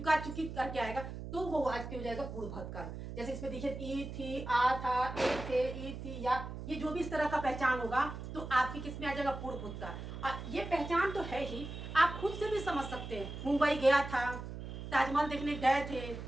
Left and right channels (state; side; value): noise; right; hum, 8 dB below the sound